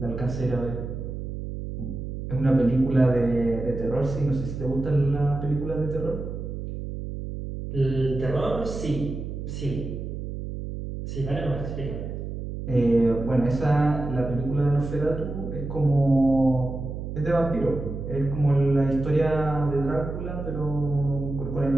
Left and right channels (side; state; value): right; noise; hum, 7 dB below the sound